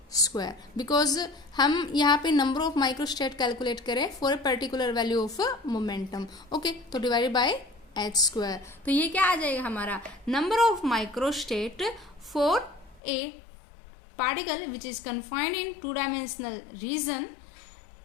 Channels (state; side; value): drops out; right; at 13.0 s